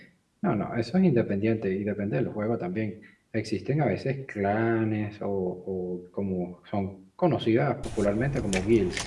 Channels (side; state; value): both; identical; correlation 1.00